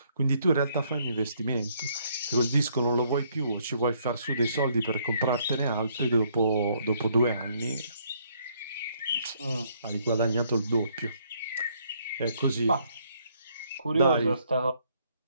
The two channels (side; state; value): both; inverted; correlation -0.68